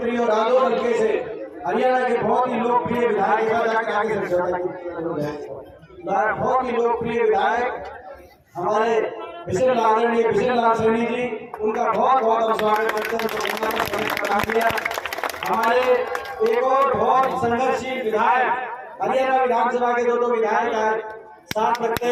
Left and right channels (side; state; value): both; identical; correlation 1.00